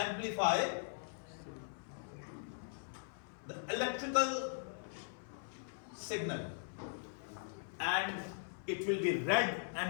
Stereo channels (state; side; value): silent; right; 51 dB below the other